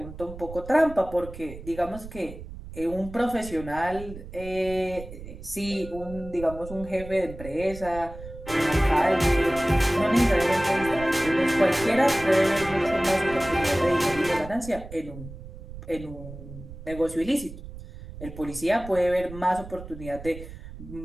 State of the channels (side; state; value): right; noise; rumble, 13 dB below the sound